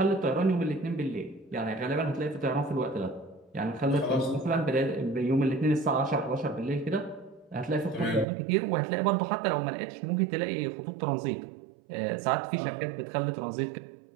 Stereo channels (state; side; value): drops out; left; at 8.2 s